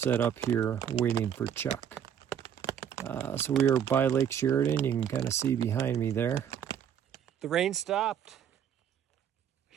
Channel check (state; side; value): quieter; left; 8.9 dB